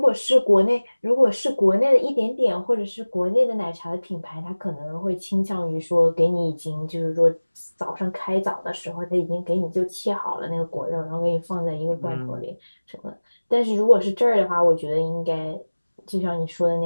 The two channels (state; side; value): inverted; both; correlation -1.00